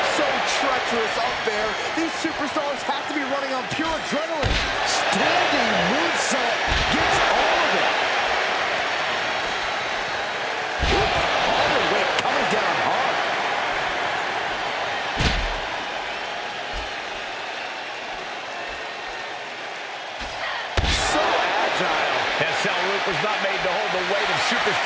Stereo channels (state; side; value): identical; both; correlation 1.00